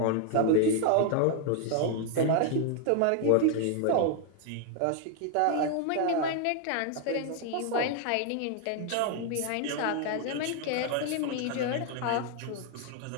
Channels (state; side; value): different; both; correlation 0.00